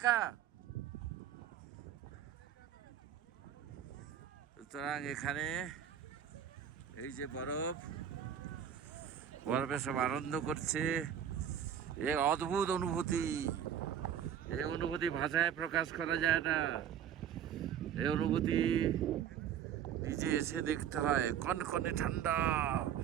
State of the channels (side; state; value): left; quieter; 9.2 dB